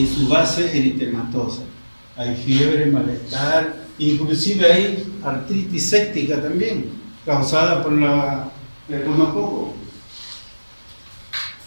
su base eritematosa. Hay fiebre, malestar, inclusive hay artritis séptica también, causada por el gonococo.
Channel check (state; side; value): inverted; both; correlation -1.00